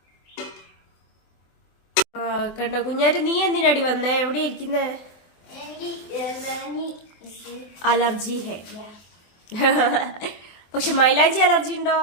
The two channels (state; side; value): late; right; 24 ms